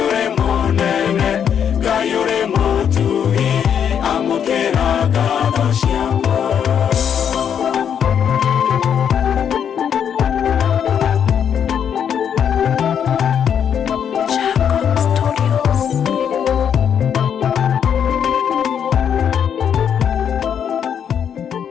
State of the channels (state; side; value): quieter; right; 8.3 dB